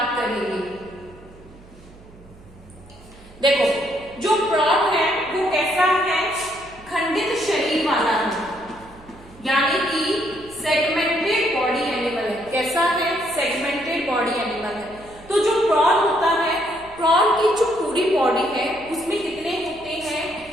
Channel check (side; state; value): right; noise; hum, 23 dB below the sound